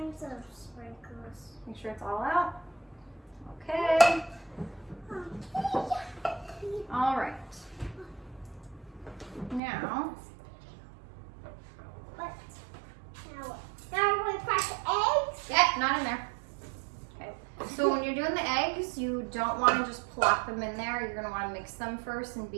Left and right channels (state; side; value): drops out; left; at 9.6 s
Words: of sprinkles. Make sure it's all out. Okay. All right. Now. What? Now we're going to crack the eggs? Yeah, not in there. Okay. So when you're doing the eggs, you don't want to just plop them in there. You're going to want to mix them first and